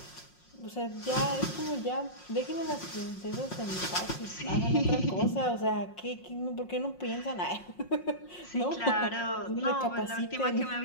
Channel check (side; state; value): right; late; 5.5 ms